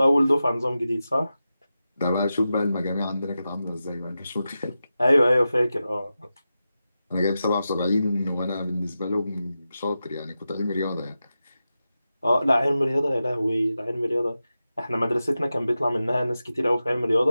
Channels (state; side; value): inverted; both; correlation -0.92